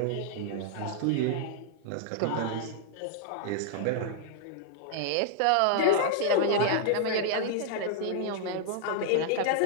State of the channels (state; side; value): different; both; correlation -0.01